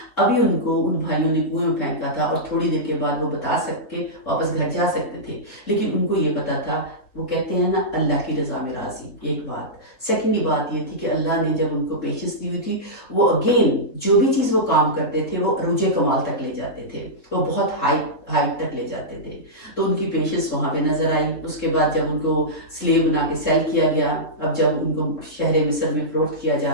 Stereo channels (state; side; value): late; right; 3.9 ms